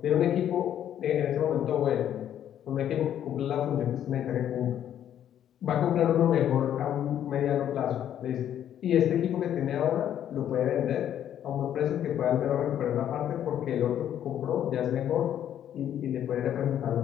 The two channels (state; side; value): quieter; right; 10.4 dB